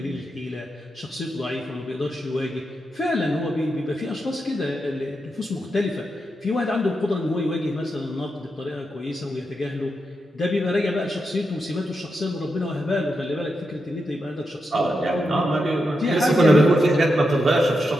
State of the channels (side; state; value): both; normal; correlation 0.86